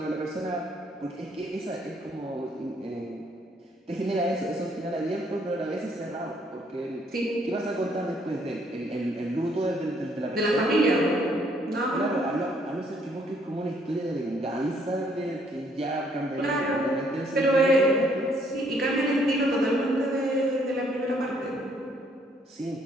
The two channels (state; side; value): normal; both; correlation 0.67